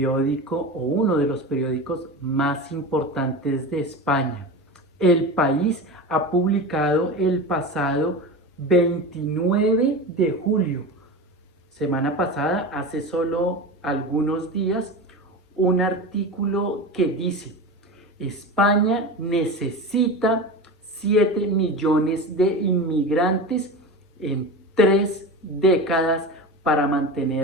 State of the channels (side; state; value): both; normal; correlation 0.27